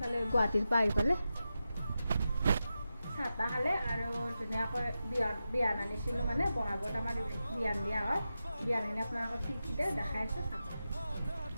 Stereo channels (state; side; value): inverted; both; correlation -0.91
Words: গুৱাহাটীৰ পৰা আহি পালে চাহ তাহ খালে। আৰু ধুনীয়াকৈ বিয়ান আনিছিলোঁ, মানে বহাগত আমাৰ বিয়ান দিয়া হয়। বিয়ানখিনি আপোনালোকক ঠিক দেখাই আছোঁ, চাব।